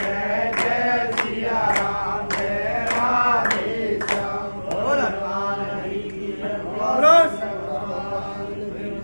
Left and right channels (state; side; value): inverted; both; correlation -1.00